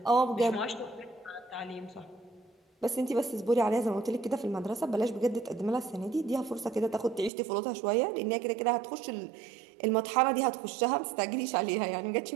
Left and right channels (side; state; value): left; drops out; at 7.3 s